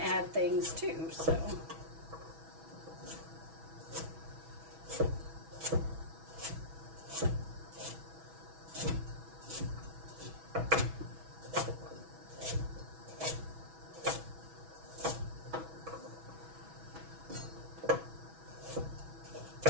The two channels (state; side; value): late; left; 6.1 ms